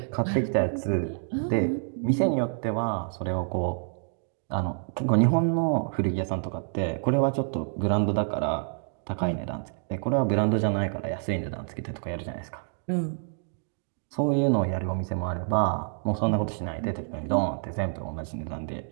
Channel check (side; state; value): left; silent; 59 dB below the other